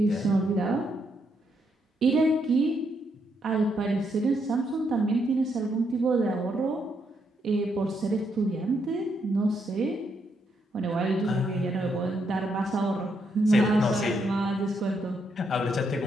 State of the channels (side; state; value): both; normal; correlation 0.77